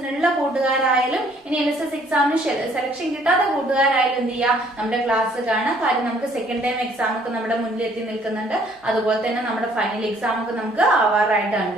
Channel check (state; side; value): normal; both; correlation 0.61